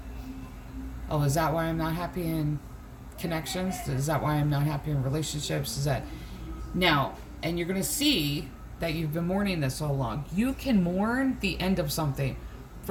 Oh, is that why I'm not happy in connections? Is that why I'm not happy in relationships? Is that... Now, and you're going to see that you've been mourning this so long. You can mourn the end of something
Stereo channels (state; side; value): identical; both; correlation 1.00